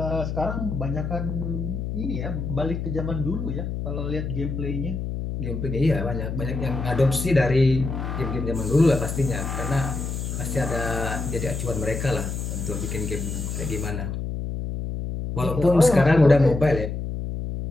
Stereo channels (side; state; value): left; noise; hum, 4 dB below the sound